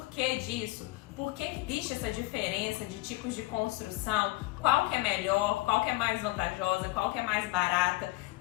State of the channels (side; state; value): right; quieter; 21.0 dB